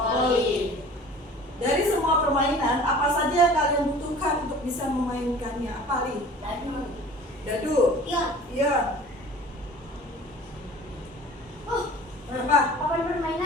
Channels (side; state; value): both; normal; correlation 0.44